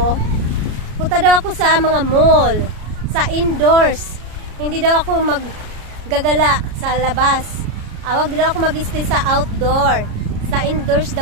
punta daw ako sa mga mall, sa indoors. Hindi daw ako maggagala sa labas. Wag daw ako mag-stay sa outdoor. Sa indoors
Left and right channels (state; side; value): late; left; 33 ms